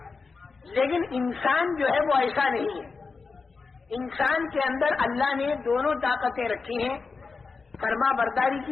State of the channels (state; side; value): quieter; right; 4.5 dB